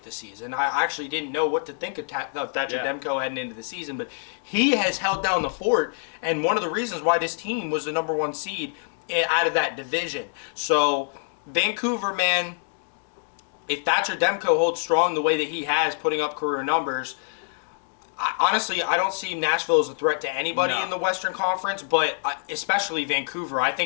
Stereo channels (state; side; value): silent; right; digital silence